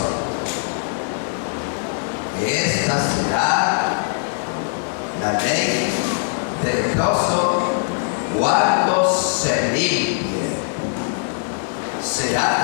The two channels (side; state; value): right; silent; 65 dB below the other